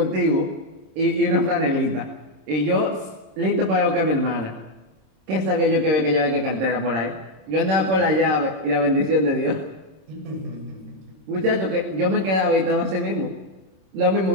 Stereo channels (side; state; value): left; late; 26 ms